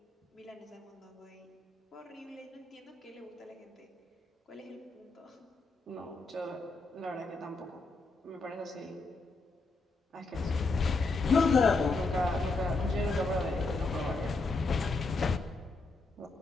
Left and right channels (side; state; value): right; quieter; 3.5 dB